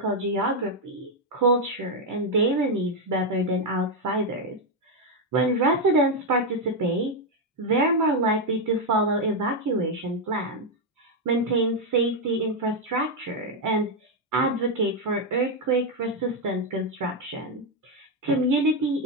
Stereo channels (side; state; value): both; normal; correlation 0.03